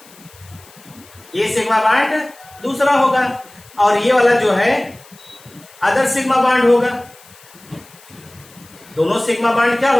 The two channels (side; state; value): left; noise; hiss, 24 dB below the sound